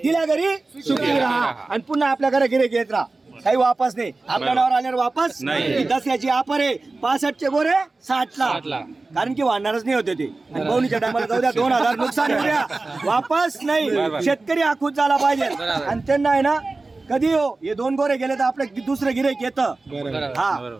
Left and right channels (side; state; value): left; quieter; 3.4 dB